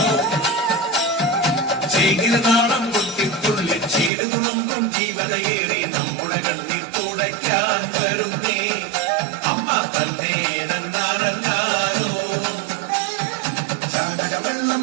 ചീരതാളം കൊട്ടിത്തുള്ളി ചീരതുളമ്പും ജീവതയേറി നമ്മുടെ കണ്ണിൽ തുടയ്ക്കാൻ വരുന്നേ. അമ്മ തന്നെ വെള്ളം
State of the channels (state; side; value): drops out; left; at 4.1 s